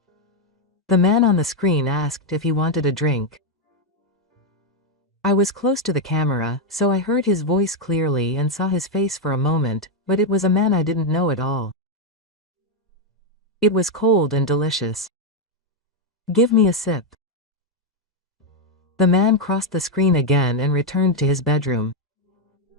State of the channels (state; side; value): normal; both; correlation 0.02